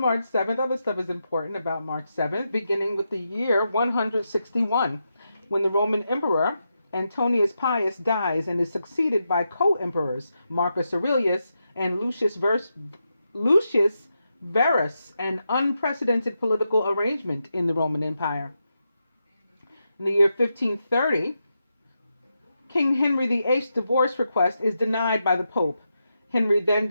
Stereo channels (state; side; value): inverted; both; correlation -0.86